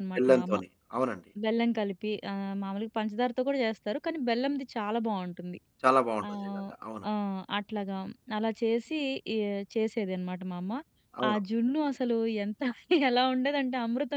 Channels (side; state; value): both; identical; correlation 1.00